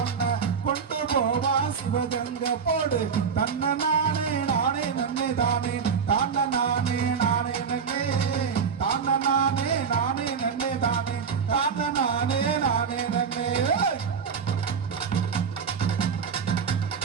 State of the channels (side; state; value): left; quieter; 6.3 dB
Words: ஒன்ன கொண்டு போவா சிவகங்கை போடு தன்ன நானே நானே நன்னே தானே தான நானே நானே நன்னே தான நானே நானே நன்னே தானே தான நானே நானே நன்னே